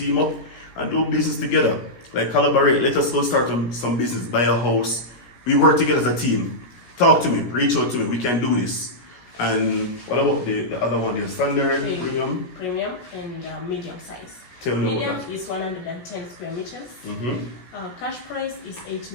up and do business together, like collaborate, let us go start some business, buy a house. We work together as a team. Talk to me, reach out to me, we can do this. And what about the other one, the standard, premium? Premium and medium size. Tell me medium about that. is 110 square meters. Cash price is 8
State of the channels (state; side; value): late; right; 17 ms